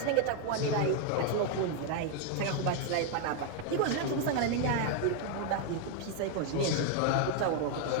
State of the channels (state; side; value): different; both; correlation 0.01